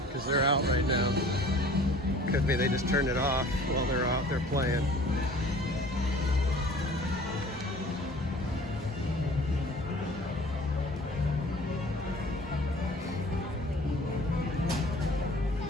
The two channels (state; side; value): normal; both; correlation 0.47